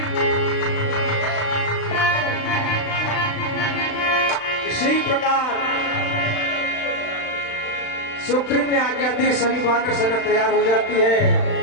इसी प्रकार सुग्रीव ने आज्ञा दी, सभी वानर सेना तैयार हो जाती है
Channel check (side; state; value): right; late; 35 ms